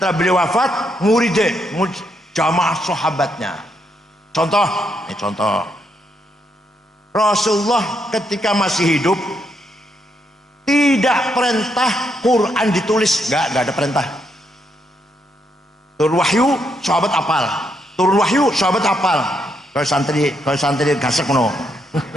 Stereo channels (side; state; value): both; normal; correlation 0.78